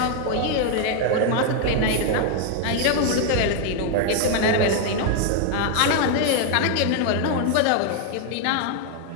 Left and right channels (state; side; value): different; both; correlation 0.00